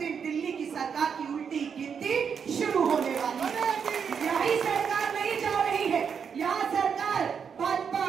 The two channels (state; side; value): quieter; left; 6.8 dB